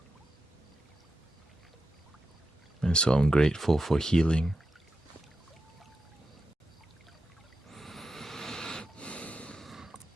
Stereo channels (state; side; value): normal; both; correlation 0.89